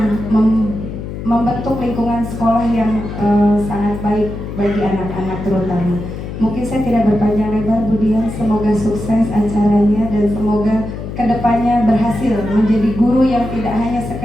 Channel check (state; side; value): noise; left; hum, 8 dB below the sound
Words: membentuk lingkungan sekolah yang sangat baik bagi anak-anak terutama. Mungkin saya tidak berpanjang lebar Bu Dian, semoga sukses acaranya dan semoga kedepannya berhasil menjadi guru yang tidak hanya